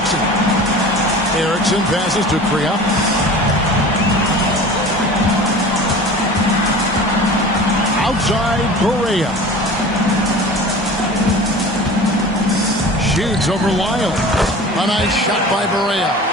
Erickson passes to Kriop. Outside, Barea. Shoots over Lyles. A nice shot by Barea.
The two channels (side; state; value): both; normal; correlation 0.38